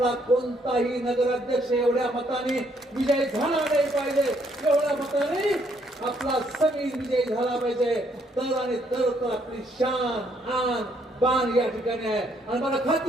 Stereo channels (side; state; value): both; normal; correlation 0.70